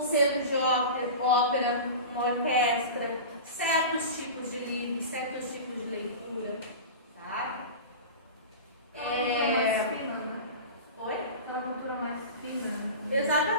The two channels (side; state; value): both; inverted; correlation -0.31